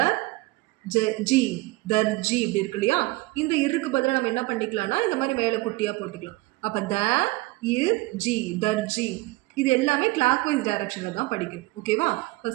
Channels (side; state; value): left; quieter; 21.3 dB